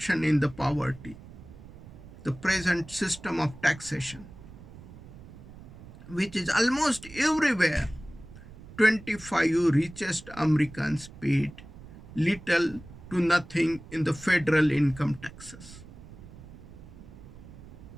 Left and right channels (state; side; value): noise; right; rumble, 17 dB below the sound